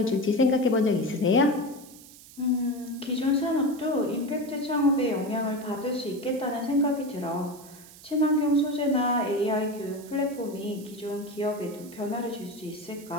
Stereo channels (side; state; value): right; noise; hiss, 20 dB below the sound